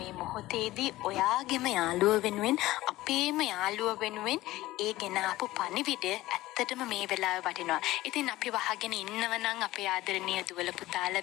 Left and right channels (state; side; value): quieter; right; 17.1 dB